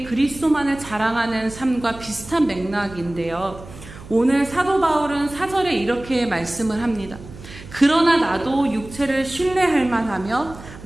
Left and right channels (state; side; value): noise; right; hum, 16 dB below the sound